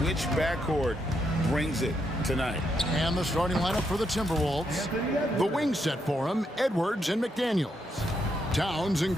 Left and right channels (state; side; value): normal; both; correlation 0.79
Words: which backcourt brings it tonight. And the starting lineup for the Timberwolves. The wing set for him, Edwards and McDaniels. Towns and